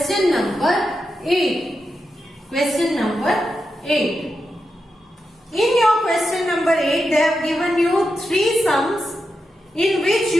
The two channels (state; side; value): normal; both; correlation 0.88